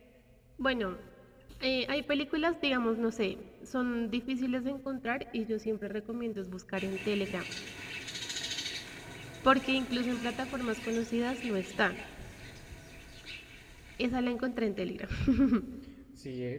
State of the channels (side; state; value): both; identical; correlation 1.00